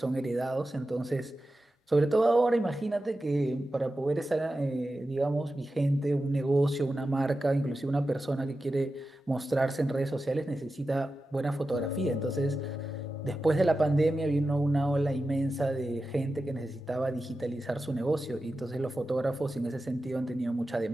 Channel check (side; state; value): both; normal; correlation 0.92